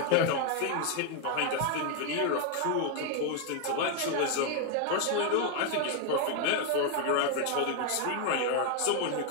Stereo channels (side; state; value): both; different; correlation 0.01